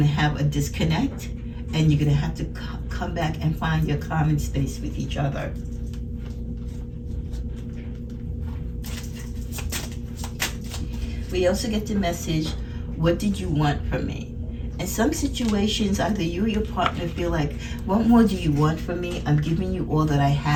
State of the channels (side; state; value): both; identical; correlation 1.00